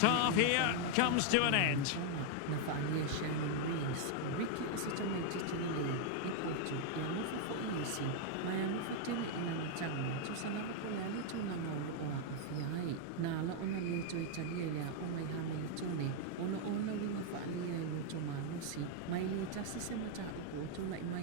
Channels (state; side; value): different; both; correlation 0.00